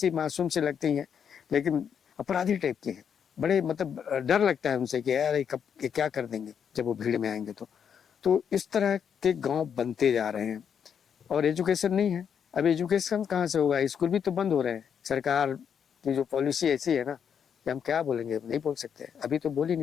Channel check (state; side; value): quieter; right; 7.7 dB